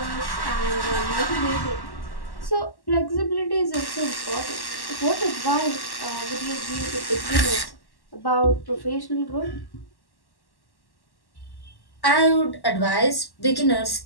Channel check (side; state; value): right; late; 1.1 ms